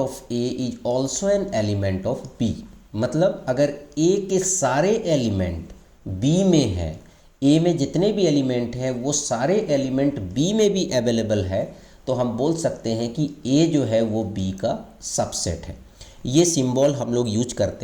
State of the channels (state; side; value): identical; both; correlation 1.00